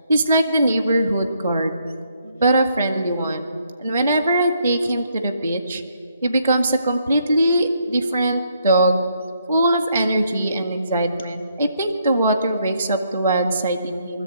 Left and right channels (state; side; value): inverted; both; correlation -0.73